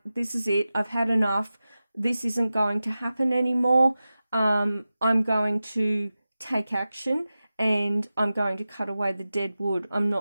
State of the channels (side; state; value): both; inverted; correlation -0.94